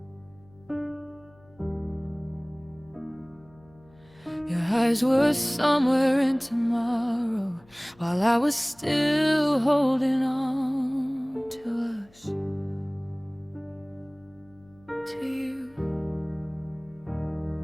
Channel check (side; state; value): left; noise; hum, 28 dB below the sound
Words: Your eyes were somewhere in tomorrow, while I was still holding on to us, to you.